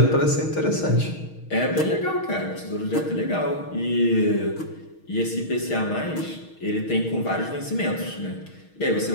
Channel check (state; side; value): late; right; 6.4 ms